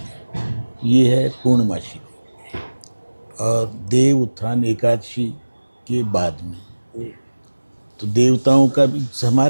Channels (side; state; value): both; inverted; correlation -1.00